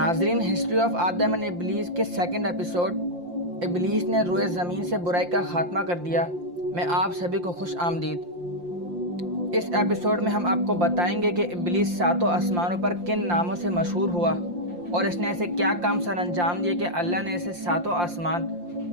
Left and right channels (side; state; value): left; late; 5.7 ms